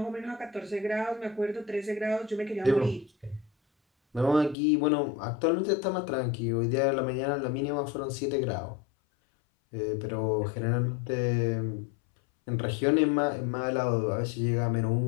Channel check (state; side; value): drops out; right; at 4.5 s